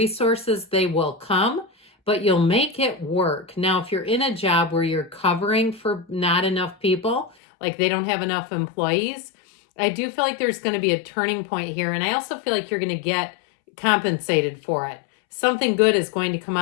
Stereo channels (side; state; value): right; drops out; at 7.4 s